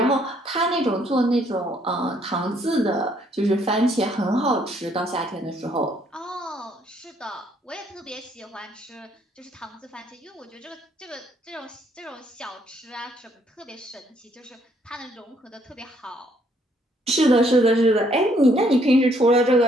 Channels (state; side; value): normal; both; correlation 0.67